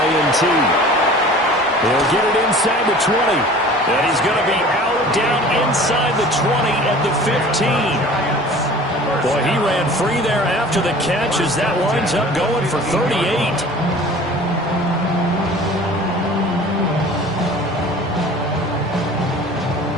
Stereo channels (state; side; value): normal; both; correlation 0.44